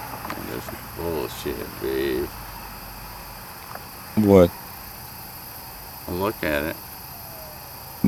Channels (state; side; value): identical; both; correlation 1.00